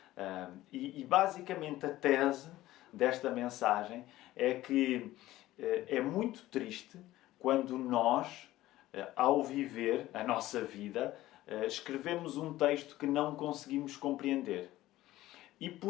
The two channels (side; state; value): right; quieter; 15.8 dB